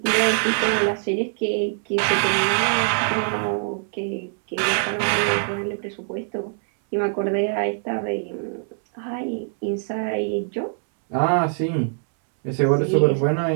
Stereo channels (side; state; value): left; silent; 63 dB below the other